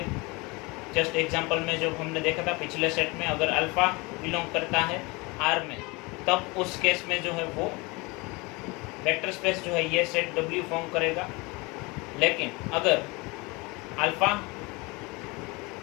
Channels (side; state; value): right; quieter; 25.9 dB